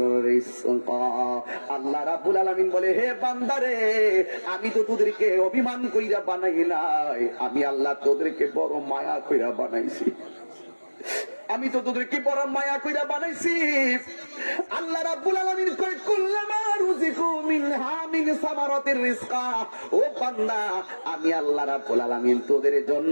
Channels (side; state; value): both; inverted; correlation -1.00